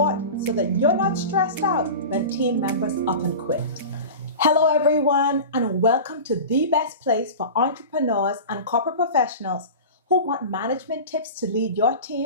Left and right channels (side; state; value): both; inverted; correlation -0.32